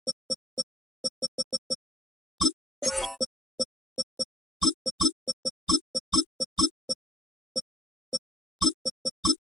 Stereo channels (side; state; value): both; normal; correlation 0.68